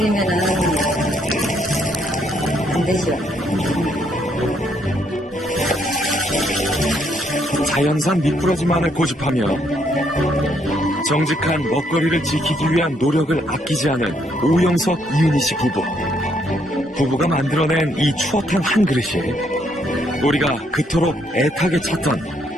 안 되죠. 자연산 미꾸라지만을 고집하며 정직한 먹거리를 지키기 위한 노력을 아끼지 않은 오영석, 이은희 씨 부부. 부부가 만들어낸 이 추어탕 한 그릇이 우리가 그토록 애타게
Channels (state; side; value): normal; both; correlation 0.72